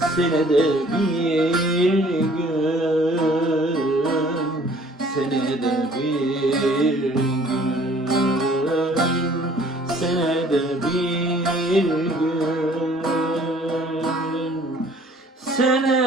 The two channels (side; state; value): both; normal; correlation 0.55